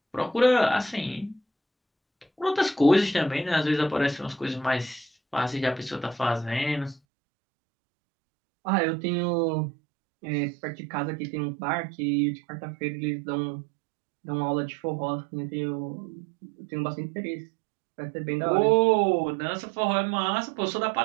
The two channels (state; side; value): drops out; left; at 7.0 s